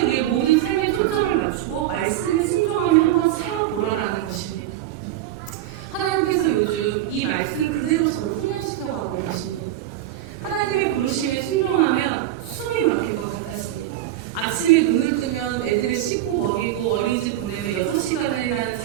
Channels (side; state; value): left; quieter; 13.1 dB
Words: 모든 삶의 초점을 맞추고 말씀에 순종하며 한번 살아보라라는 것입니다. 하나님께서 요즘 이 말씀 그대로 저를 훈련시켜가고 계십니다. 하나님의 부르심에 순종하면 숨이 막힐 것 같았습니다. 아침에 눈을 뜨면 애들을 씻고 먹이고 어린이집 보내면 6시간이라는